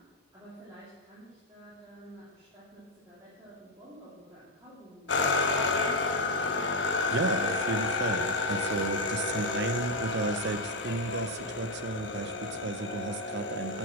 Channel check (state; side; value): normal; both; correlation 0.05